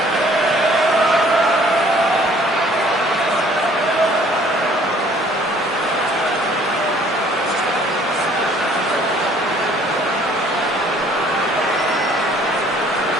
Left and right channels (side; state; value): both; normal; correlation 0.57